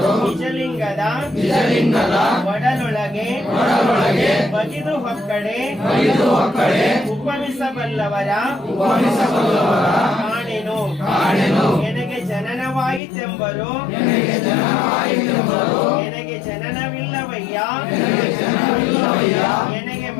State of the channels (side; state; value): right; drops out; at 13.0 s